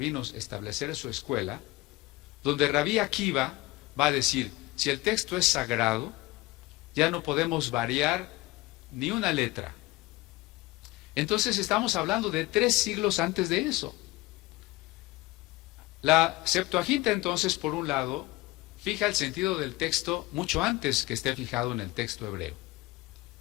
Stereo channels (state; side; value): quieter; right; 20.5 dB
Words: establecer su escuela, donde Rabí Akiva va a decir, si el texto es sagrado, ya no podemos variar ni una letra. Entonces estamos hablando de 3 siglos antes de eso. La Septuaginta entonces, por un lado, fija el sentido del texto mucho antes que esté fijado en el texto hebreo.